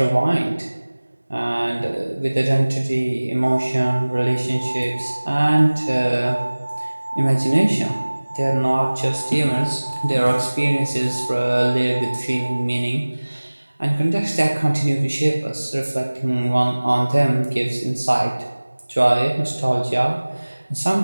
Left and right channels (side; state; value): both; inverted; correlation -1.00